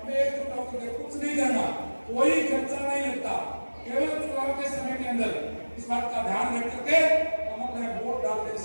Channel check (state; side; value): inverted; both; correlation -1.00